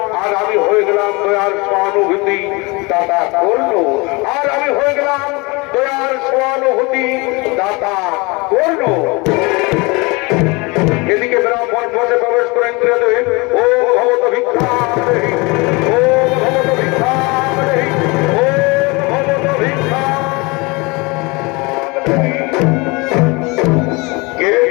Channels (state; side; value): quieter; right; 26.4 dB